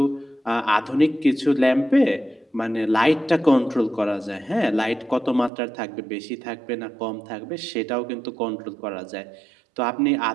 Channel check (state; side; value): drops out; left; at 5.5 s